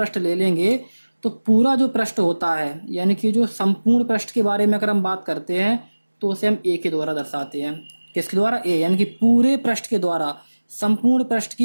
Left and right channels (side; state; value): both; inverted; correlation -1.00